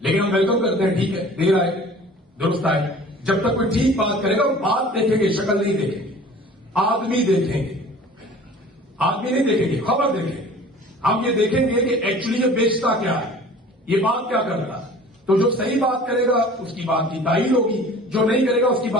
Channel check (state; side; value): normal; both; correlation 0.45